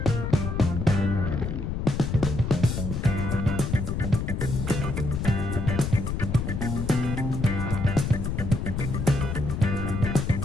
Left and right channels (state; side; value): noise; left; rumble, 3 dB below the sound